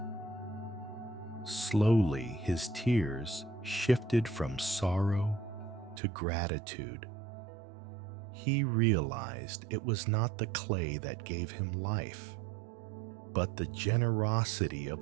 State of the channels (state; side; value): drops out; left; at 6.0 s